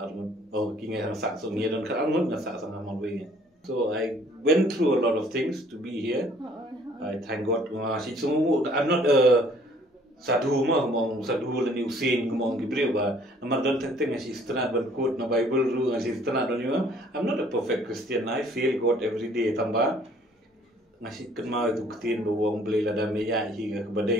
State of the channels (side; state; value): both; normal; correlation 0.58